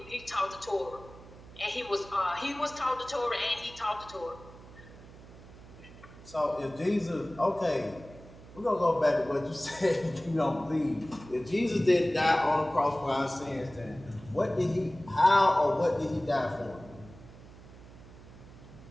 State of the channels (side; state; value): right; noise; hum, 19 dB below the sound